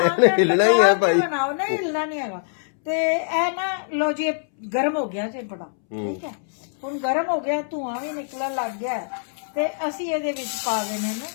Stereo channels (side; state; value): right; silent; 63 dB below the other